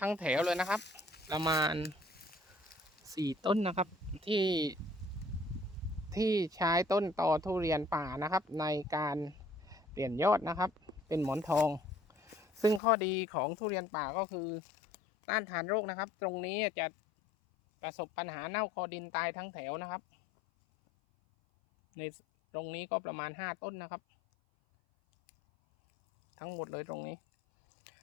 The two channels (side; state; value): right; drops out; at 12.8 s